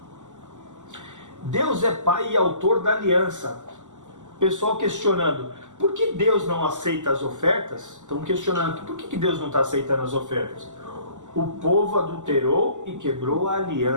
Deus é Pai e autor da aliança. Pessoal questionando, por que Deus não aceita as ofertas? Estão questionando, por que Deus não está aceitando as ofertas? O povo adulterou e quebrou a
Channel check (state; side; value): late; left; 0.85 ms